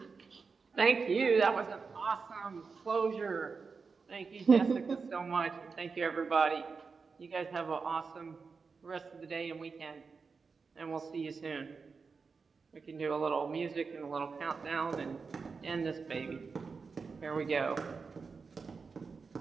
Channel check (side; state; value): left; quieter; 4.9 dB